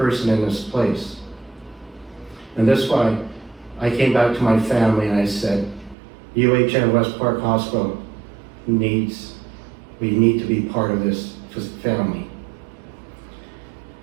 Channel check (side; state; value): left; drops out; at 6.0 s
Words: in this place. And that's why I came back to my family and I said, UHN WestPark Hospital we need to be part of this family.